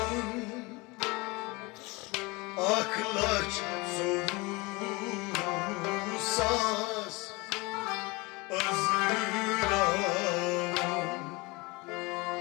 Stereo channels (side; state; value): right; quieter; 25.1 dB